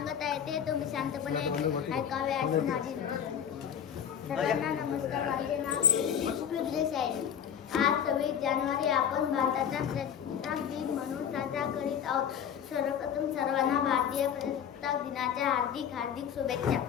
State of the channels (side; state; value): right; quieter; 8.6 dB